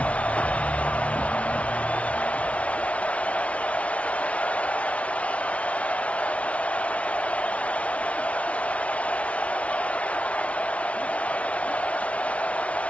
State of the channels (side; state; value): right; late; 0.064 ms